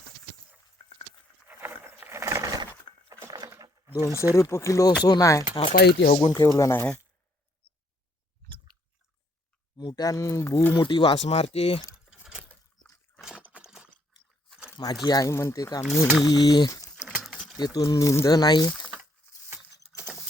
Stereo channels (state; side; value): normal; both; correlation 0.69